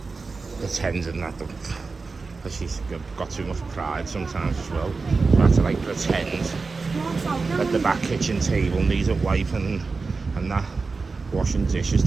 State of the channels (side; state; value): left; quieter; 4.3 dB